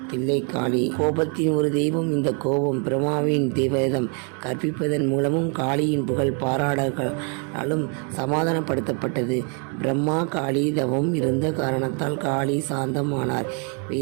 தில்லை காளி கோபத்தின் ஒரு தெய்வம். இந்த கோபம் பிரம்மாவின் வேதம் கற்பிப்பதன் மூலமும் காளியின் புகழ் பாராடலும் சமாதானப்படுத்தப்பட்டது. பிரம்மா காளி தவம் இருந்த காரணத்தால் காளி சாந்தமானார்.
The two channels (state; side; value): quieter; left; 38.5 dB